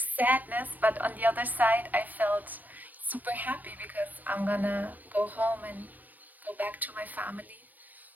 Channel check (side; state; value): left; late; 0.086 ms